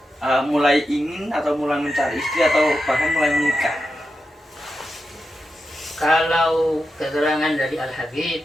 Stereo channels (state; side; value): normal; both; correlation 0.89